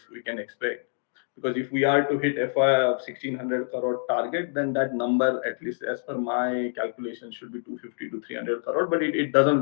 can expect. Because if we are to hit FY of 1600 crore target, then that number, at least as per my calculation, should be 250 to 300 crore. But it doesn't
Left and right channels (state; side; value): silent; right; digital silence